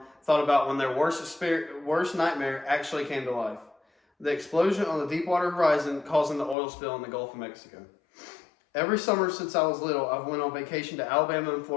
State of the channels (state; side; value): drops out; right; at 6.6 s